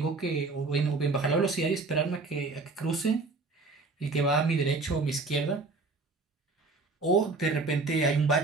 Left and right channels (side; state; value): left; quieter; 3.7 dB